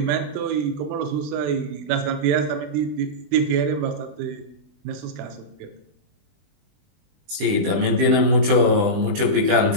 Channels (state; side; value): late; left; 20 ms